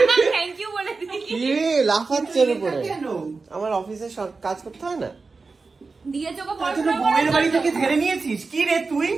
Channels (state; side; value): quieter; left; 4.2 dB